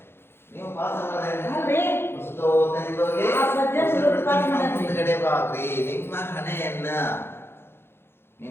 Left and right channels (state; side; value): late; right; 0.11 ms